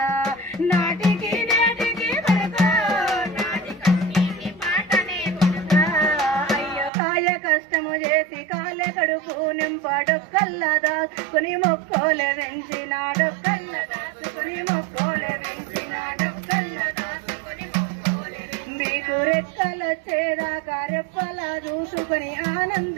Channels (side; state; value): left; drops out; at 6.9 s